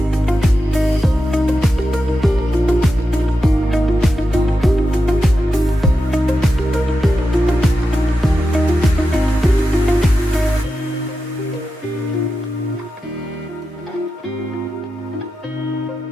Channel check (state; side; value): normal; both; correlation 0.89